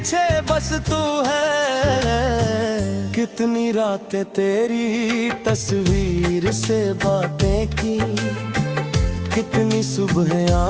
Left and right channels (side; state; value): both; identical; correlation 1.00